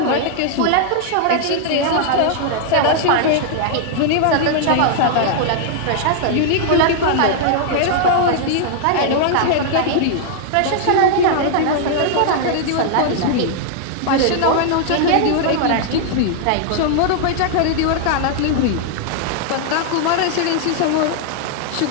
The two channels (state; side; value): different; both; correlation 0.00